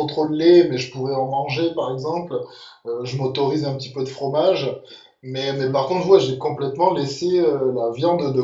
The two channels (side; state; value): both; identical; correlation 1.00